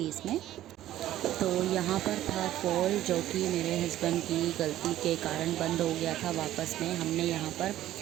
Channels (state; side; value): quieter; left; 13.5 dB